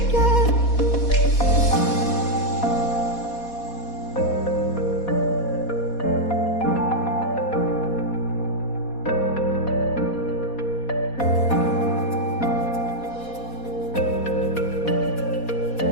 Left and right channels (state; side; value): late; right; 4.2 ms